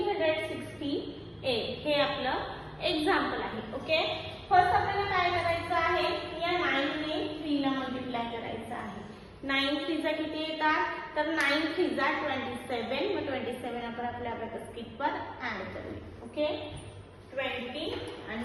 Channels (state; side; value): identical; both; correlation 1.00